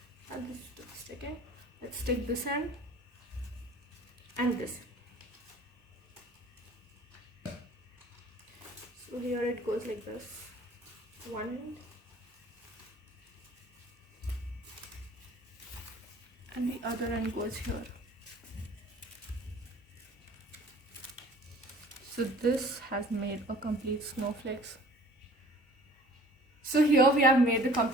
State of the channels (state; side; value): normal; both; correlation 0.50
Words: And this is sticking. Let's stick this end and this. So here it goes like this. One end and the other end goes here. So this has made a complete snowflakes. So here we have made the